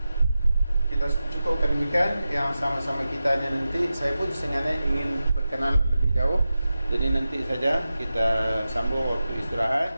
Kita cukupkan demikian. Yang sama-sama kitanya nanti, saya pun sebenarnya ingin berkenalan lebih jauh, jadi nanti saja kita sambung waktu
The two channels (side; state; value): both; inverted; correlation -0.93